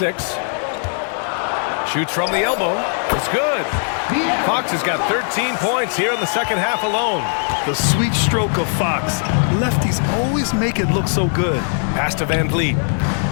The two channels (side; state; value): right; silent; 56 dB below the other